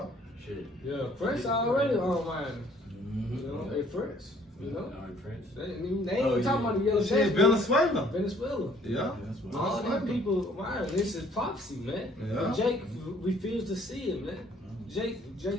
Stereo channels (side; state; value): both; normal; correlation 0.59